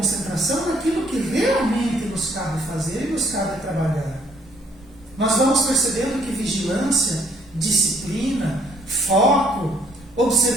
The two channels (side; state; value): both; normal; correlation 0.64